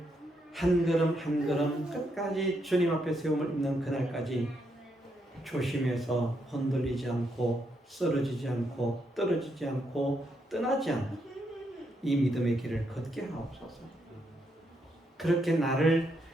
한 걸음 한 걸음 끝까지 주님 앞에 세움을 입는 그날까지 조심해서 흔들리지 않고 쓰러지지 않고 떨어지지 않고 떠나지 않고 이 믿음의 길을 걷게 하옵소서. 그렇게 나를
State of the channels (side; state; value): both; normal; correlation 0.78